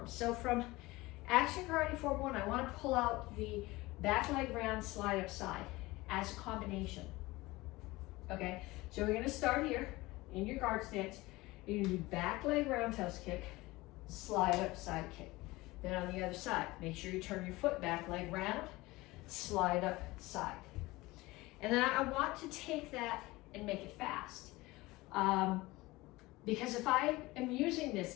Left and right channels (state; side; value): quieter; right; 20.6 dB